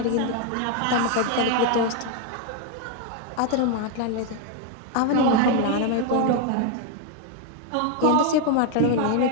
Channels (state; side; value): different; both; correlation 0.01